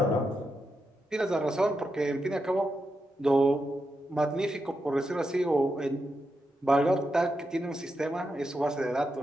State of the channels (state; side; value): normal; both; correlation 0.86